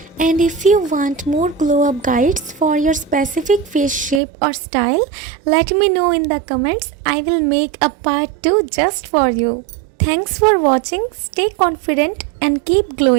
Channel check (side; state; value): left; drops out; at 4.2 s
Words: And if you want more glow up guides for your specific face shape or style, let me know in the comments. I will make a part 2 just for you. Thanks for watching. Stay confident and keep